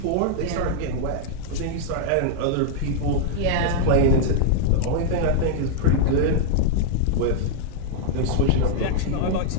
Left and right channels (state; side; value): different; both; correlation 0.00